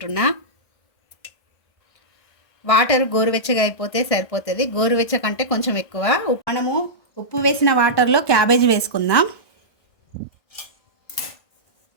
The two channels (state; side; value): late; right; 1.5 ms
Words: వాటర్ గోరువెచ్చగా అయిపోతే సరిపోతుంది. గోరువెచ్చ కంటే కొంచెం ఎక్కువ. మనము ఉప్పు వేసిన వాటర్లో క్యాబేజీ వేసుకుందాం.